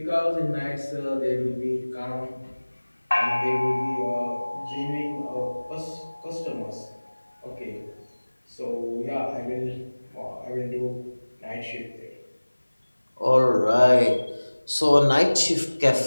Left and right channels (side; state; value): both; inverted; correlation -1.00